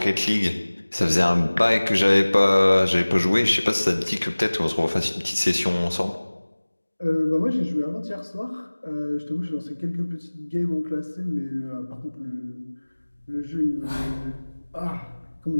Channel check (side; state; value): both; inverted; correlation -1.00